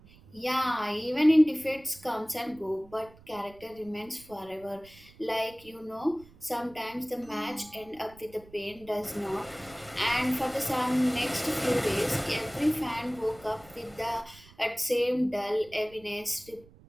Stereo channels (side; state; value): right; noise; rumble, 23 dB below the sound